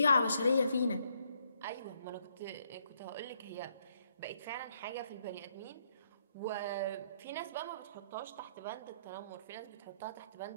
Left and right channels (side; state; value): both; inverted; correlation -0.72